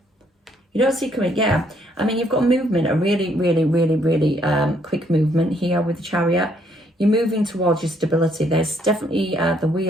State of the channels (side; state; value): both; normal; correlation 0.68